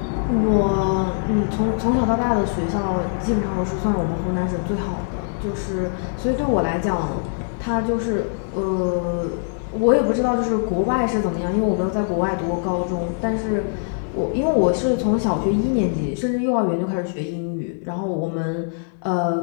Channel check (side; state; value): right; silent; digital silence